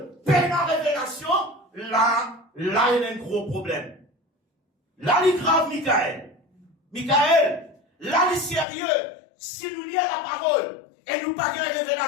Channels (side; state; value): right; drops out; at 8.7 s